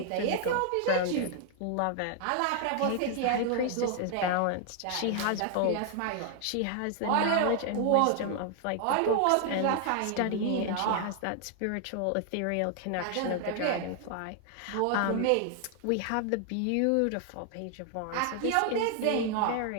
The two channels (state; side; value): different; both; correlation 0.00